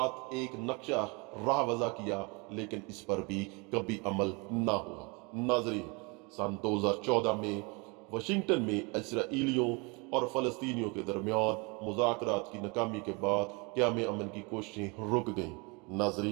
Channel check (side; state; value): left; quieter; 29.6 dB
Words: एक नक्शा राह वज़ा किया, लेकिन इस पर भी कभी अमल ना हुआ। नाजरीन, सन 2014 में वाशिंगटन में इसराइलियों और फ़लस्तीनियों के दरमियान मुज़ाकरात की नाकामी के बाद क़याम अमन की कोशिशें रुक गईं।